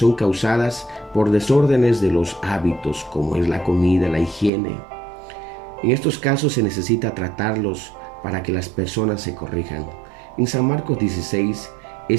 causadas por desórdenes de los hábitos, como es la comida, la higiene. En estos casos se necesita tratarlos para que las personas se corrijan. En San Marcos 16,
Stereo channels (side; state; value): left; drops out; at 4.5 s